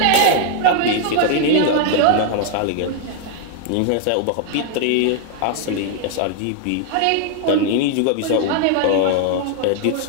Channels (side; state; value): both; different; correlation 0.00